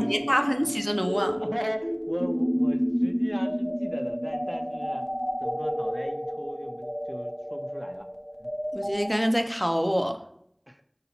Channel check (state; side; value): identical; both; correlation 1.00